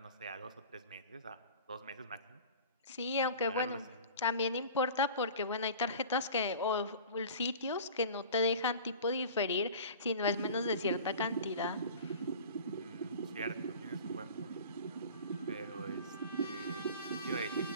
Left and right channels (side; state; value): both; inverted; correlation -0.40